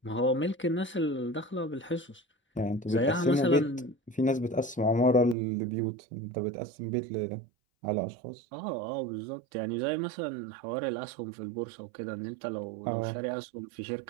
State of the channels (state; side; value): drops out; left; at 5.4 s